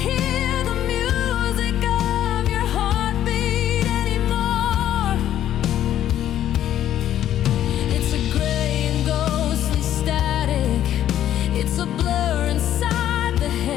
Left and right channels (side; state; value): right; quieter; 11.5 dB